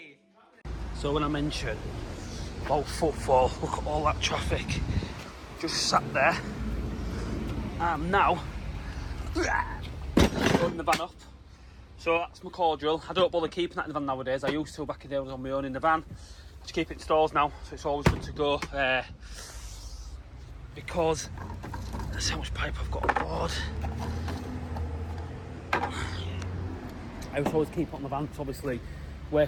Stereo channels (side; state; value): both; identical; correlation 1.00